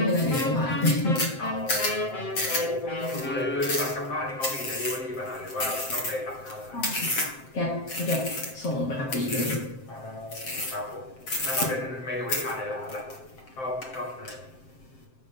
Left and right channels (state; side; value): late; right; 7.6 ms